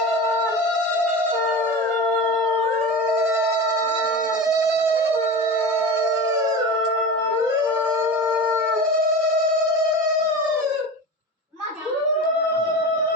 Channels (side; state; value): both; normal; correlation 0.29